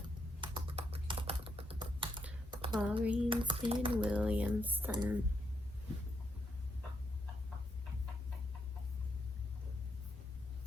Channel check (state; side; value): normal; both; correlation 0.78